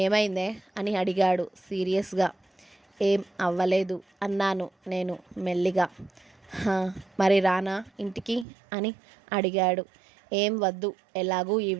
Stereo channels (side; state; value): left; drops out; at 8.5 s